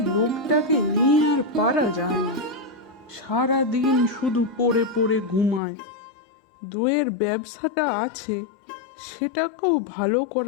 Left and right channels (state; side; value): drops out; right; at 5.6 s